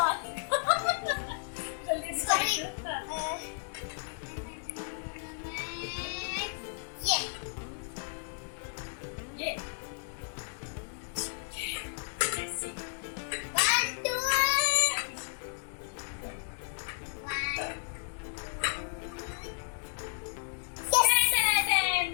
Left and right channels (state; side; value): silent; right; digital silence